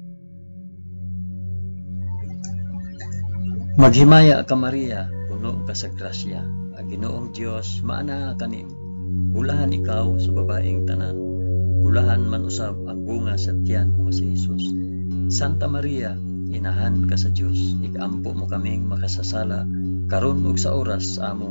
Maghimaya ka Maria, puno ka sa grasya, ang Ginoong Dios maanaa kanimo. Bulahan ikaw sa babaeng tanan, bulahan man usab ang bunga sa tiyan mo si Jesus. Santa Maria, inahan ka sa Dios, igampo mo kaming makasasala, karon ug sa oras sa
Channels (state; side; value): inverted; both; correlation -1.00